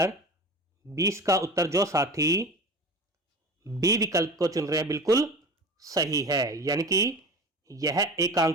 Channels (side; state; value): both; normal; correlation 0.34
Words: 20 का उत्तर जो साथी बी विकल्प को चुन रहे हैं बिल्कुल सही है, यानी कि यह